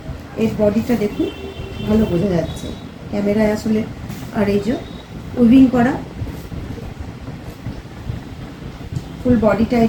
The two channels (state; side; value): identical; both; correlation 1.00